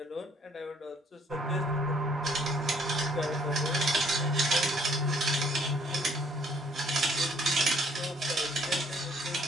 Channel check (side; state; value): both; normal; correlation 0.63